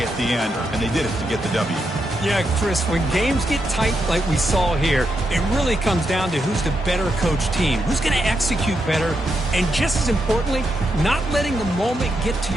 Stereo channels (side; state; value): both; normal; correlation 0.83